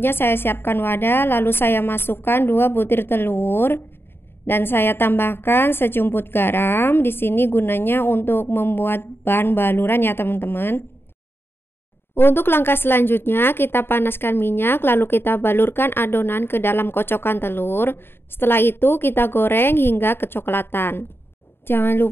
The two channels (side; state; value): right; late; 0.11 ms